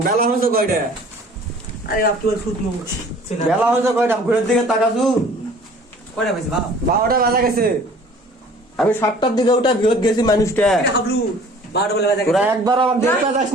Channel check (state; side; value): normal; both; correlation 0.50